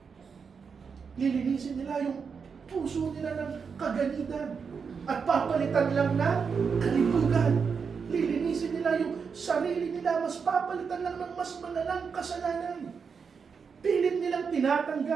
Lilinisin nila yung puso nila ng kaganitan at papalitan lang ng kalibugan. Lilinisin nila yung sarili nila, mas papalitan lang ng mas malalang kasalanan. Pilit nilang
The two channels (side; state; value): left; quieter; 5.9 dB